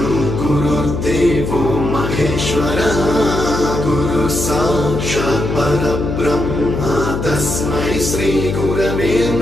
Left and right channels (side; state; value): left; noise; hum, 3 dB below the sound